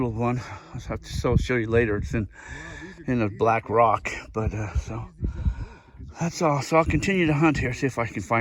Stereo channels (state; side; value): identical; both; correlation 1.00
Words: one. I'll have to show you later. It's in a black rock, but so that's all. So I'll continue to hunt here, see if I can